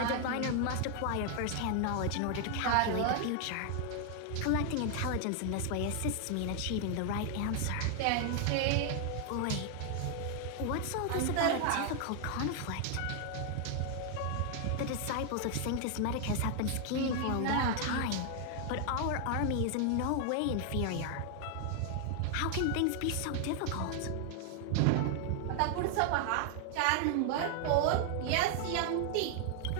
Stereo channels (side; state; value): both; different; correlation 0.00